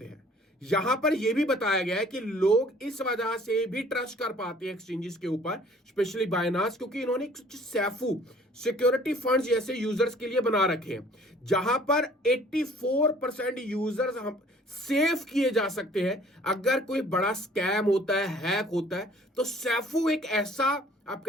हैं। यहां पर यह भी बताया गया है कि लोग इस वजह से भी ट्रस्ट कर पाते हैं एक्सचेंजेस के ऊपर, स्पेशली बाइनांस, क्योंकि इन्होंने सैफू सिक्योरिटी फंड्स जैसे यूजर्स के लिए बना रखे हैं, जहां पर 84% यूजर्स हम सेफ किए जा सकते हैं। अगर कोई बड़ा स्कैम होता है, हैक होता है, तो सैफू एक ऐसा आप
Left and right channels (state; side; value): normal; both; correlation 0.54